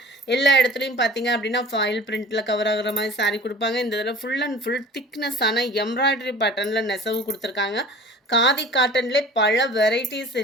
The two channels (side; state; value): both; normal; correlation 0.42